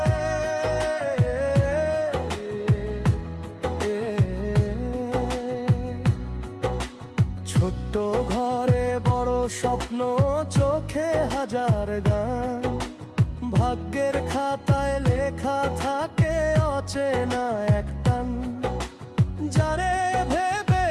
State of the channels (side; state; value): both; identical; correlation 1.00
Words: ছোট্ট ঘরে বড় স্বপ্ন, চোখে হাজার গান, ভাগ্যের খাতায় লেখা থাকে অচেনা এক টান। যারে ভেবে